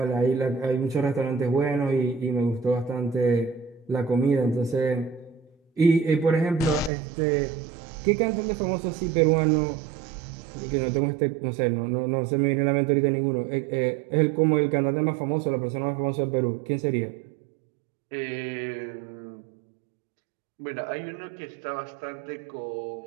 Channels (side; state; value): left; drops out; at 6.9 s